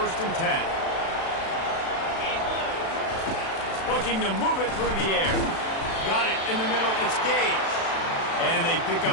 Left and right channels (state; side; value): late; right; 36 ms